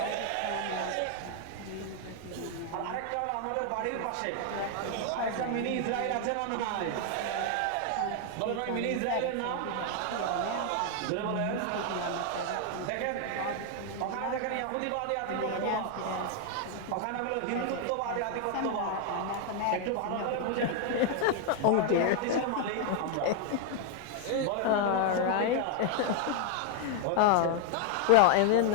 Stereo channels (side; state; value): both; different; correlation 0.00